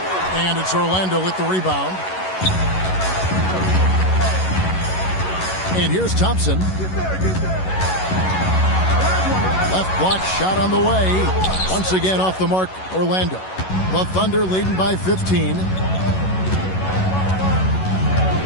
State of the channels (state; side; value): late; right; 11 ms